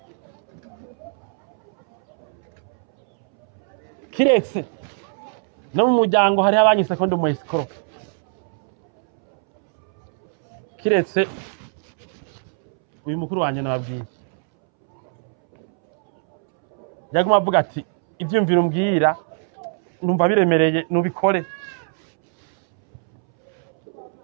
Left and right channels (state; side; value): silent; left; 64 dB below the other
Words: kiretse no mu muryango hariho abanyise ko ndi mu escrow kiretse uyu mukuru wanje nababwiye yaguma avuga ati ivyumviro mbwira numva biremereye nubikore